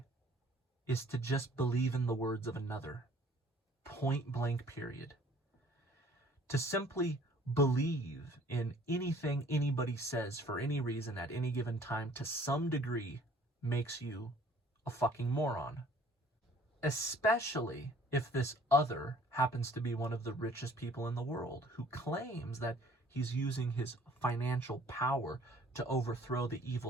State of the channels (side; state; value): both; normal; correlation 0.55